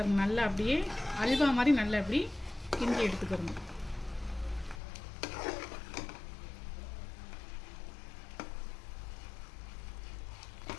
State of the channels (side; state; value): right; drops out; at 4.8 s